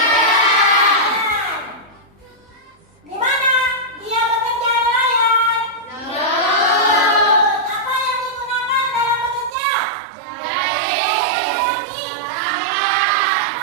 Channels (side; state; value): left; drops out; at 9.6 s